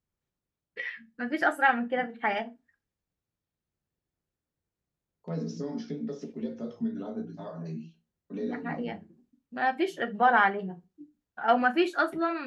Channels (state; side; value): identical; both; correlation 1.00